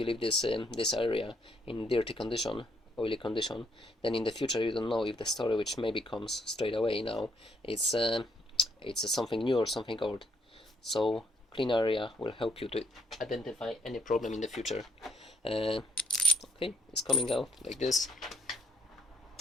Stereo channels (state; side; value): normal; both; correlation 0.70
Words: area in dirty condition, oily condition, then in the future you don't know if the story which maybe comes straight away now it's something new or something old. So clean area will help you to identify any problem in the future. Okay, it's coming out like this.